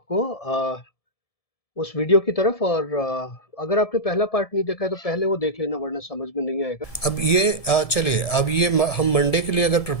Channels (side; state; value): right; late; 1.7 ms